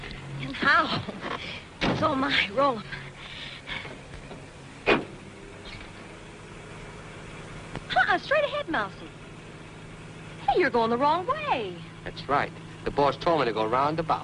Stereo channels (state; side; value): identical; both; correlation 1.00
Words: And how? So am I. Roll 'em. Straight ahead, Mousy. Hey, you're going the wrong way. That's right. The boss told me to go